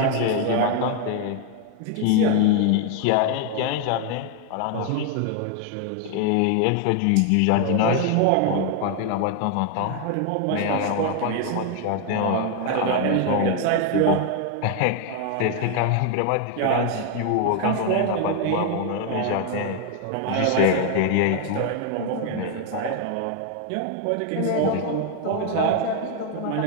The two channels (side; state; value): both; different; correlation 0.00